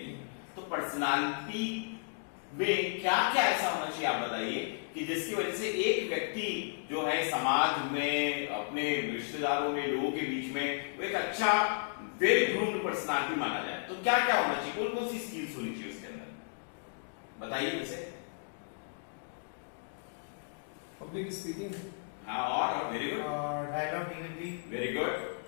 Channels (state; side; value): silent; right; digital silence